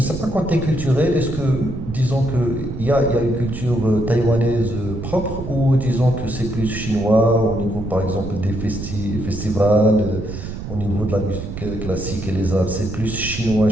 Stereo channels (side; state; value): right; noise; rumble, 8 dB below the sound